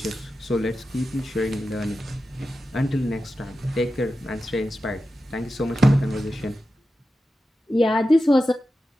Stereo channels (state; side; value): normal; both; correlation 0.92